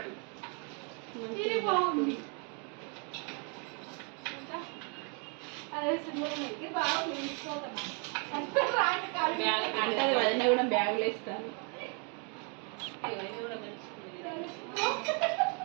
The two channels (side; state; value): left; quieter; 37.3 dB